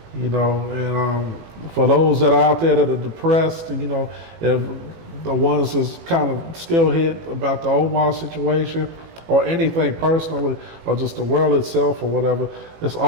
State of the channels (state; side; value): late; left; 18 ms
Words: you know. And for those that are out there that are depressed, you know, if the ones that's kind of still hit about the Omar situation or anything personally or just the world itself or whatever, it's